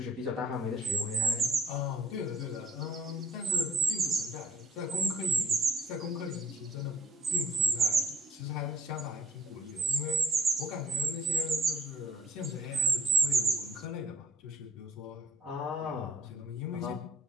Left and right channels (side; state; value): both; normal; correlation 0.58